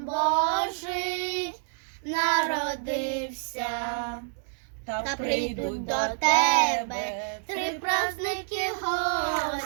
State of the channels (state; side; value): silent; left; digital silence